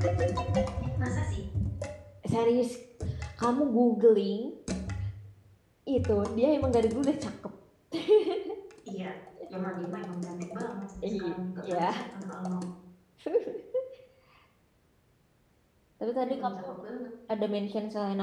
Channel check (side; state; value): both; identical; correlation 1.00